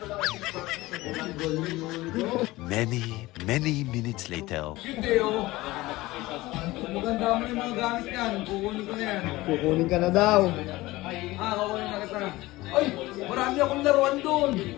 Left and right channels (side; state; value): right; quieter; 19.2 dB